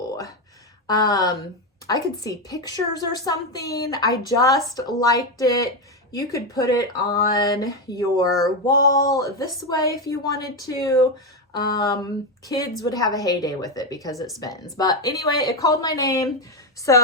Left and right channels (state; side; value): normal; both; correlation 0.09